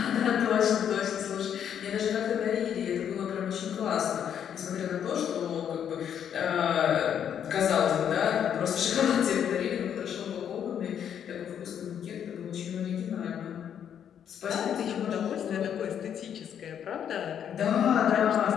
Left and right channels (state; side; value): quieter; right; 8.9 dB